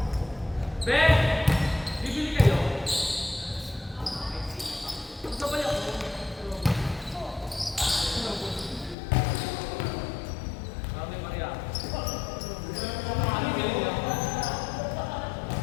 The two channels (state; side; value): drops out; right; at 9.0 s